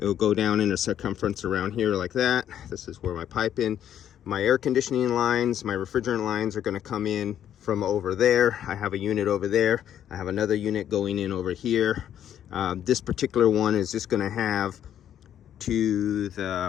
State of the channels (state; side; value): quieter; right; 10.3 dB